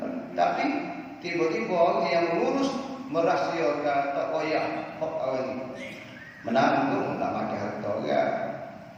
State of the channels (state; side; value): identical; both; correlation 1.00